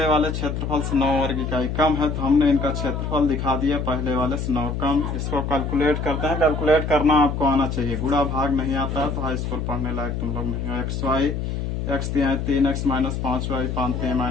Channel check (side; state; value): left; noise; hum, 3 dB below the sound